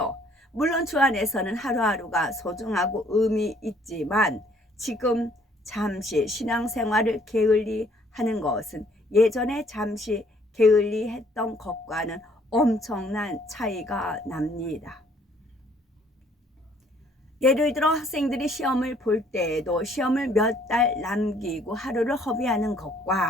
물론 주 안에서는 하루하루가 소중하고 의미 있지만 지금 잠시 신앙생활을 게을리 하는 것은 예전에 잠시 게을리 했던 것과는 엄청난 차이가 납니다. 예를 들어 학생들이 시험을 볼 때에도 시험을 몇 달 남기고 하루를 허비하는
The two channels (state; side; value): normal; both; correlation 0.62